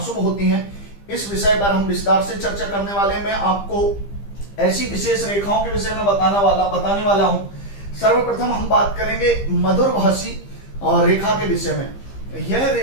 होती हैं, इस विषय पर हम विस्तार से चर्चा करने वाले हैं। मैं आपको ऐसी विशेष रेखाओं के विषय में बताने वाला हूं। सर्वप्रथम हम बात करेंगे मधुरभाषी रेखा के विषय में। यह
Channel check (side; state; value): right; late; 15 ms